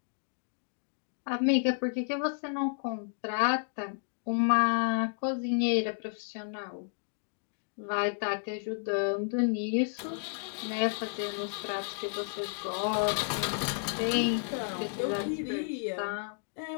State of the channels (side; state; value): right; silent; digital silence